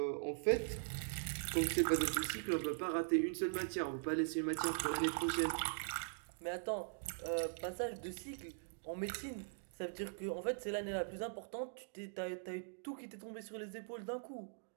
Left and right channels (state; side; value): silent; left; digital silence